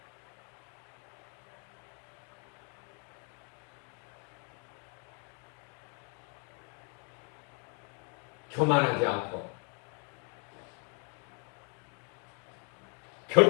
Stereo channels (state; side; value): quieter; right; 38.3 dB